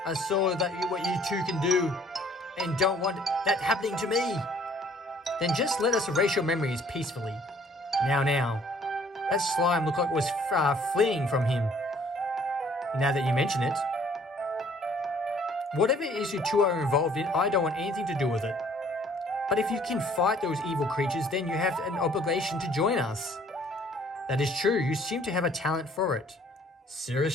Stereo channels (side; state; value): both; normal; correlation 0.58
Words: I saw what you two can do and don't want that happening to me. Then just let us erase your memories peacefully. Now, that slime looked like it was fleeing from him. Now that you mention it. Whatever it is you two are involved in, I don't want anything to do with it. But if you can fight those evil creatures, then you have an obligation to join us. That is true, you seem to have a talent for it.